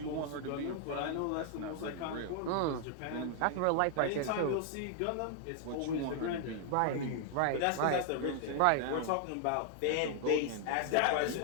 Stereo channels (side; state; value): both; different; correlation 0.00